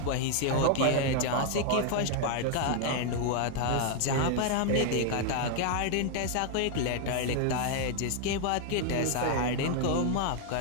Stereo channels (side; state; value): both; different; correlation 0.00